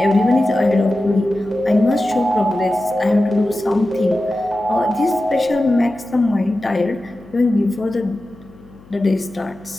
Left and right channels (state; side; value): noise; left; hum, 24 dB below the sound